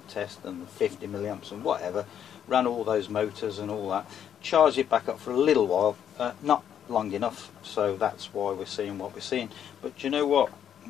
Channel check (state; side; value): quieter; right; 9.2 dB